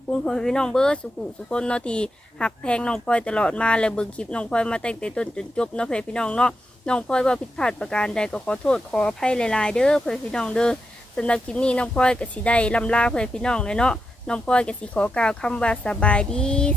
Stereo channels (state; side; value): normal; both; correlation 0.86